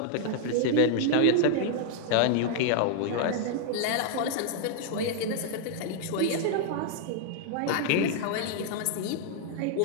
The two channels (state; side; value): different; both; correlation -0.01